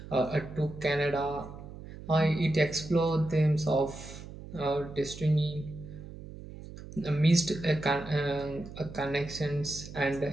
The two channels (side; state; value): right; noise; hum, 14 dB below the sound